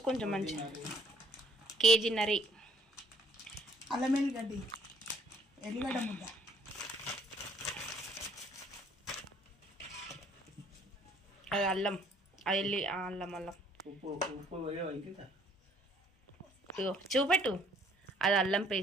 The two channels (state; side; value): normal; both; correlation 0.61